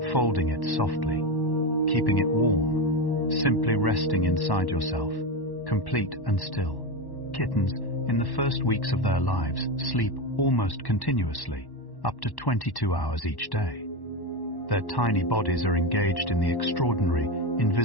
folding it softly, keeping it warm, simply resting inside yourself, complete and still. Kittens, in the first weeks of their lives, sleep almost continuously, up to 22 hours each day. Their tiny bodies are engaged in the extraordinary,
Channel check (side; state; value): right; late; 1.1 ms